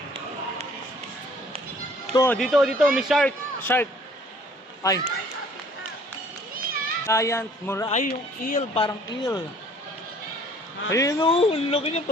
Dito, may shark. Shark. Ay. Giant mura. Ay, yung eel. Parang eel. Ayun ang laki niya.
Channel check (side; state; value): both; normal; correlation 0.56